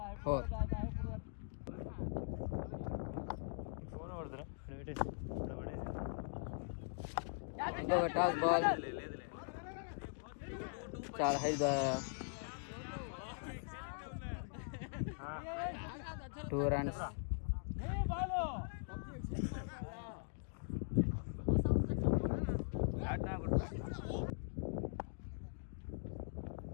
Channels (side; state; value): right; silent; digital silence